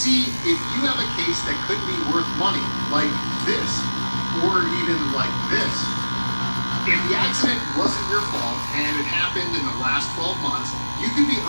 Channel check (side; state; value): both; inverted; correlation -1.00